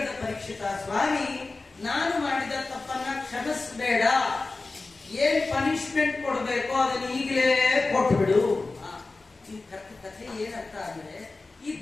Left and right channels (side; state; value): right; quieter; 3.5 dB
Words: ಪರೀಕ್ಷಿತ, ಸ್ವಾಮಿ ನಾನು ಮಾಡಿದ ತಪ್ಪನ್ನ ಕ್ಷಮಿಸಬೇಡ, ಏನ್ ಪನಿಷ್ಮೆಂಟ್ ಕೊಡ್ಬೇಕೋ ಅದನ್ನ ಈಗಲೇ ಕೊಟ್ಬಿಡು. ಈ ಕಥೆ ಏನಂತ ಅಂದ್ರೆ, ಈ